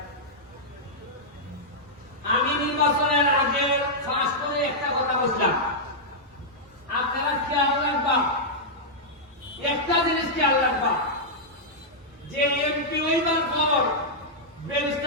আমি নির্বাচনের আগে ফাঁস করে একটা কথা বললাম আপনারা খেয়াল রাখবা একটা জিনিস খেয়াল রাখবা যে এমপি হইবার পর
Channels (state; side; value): normal; both; correlation -0.08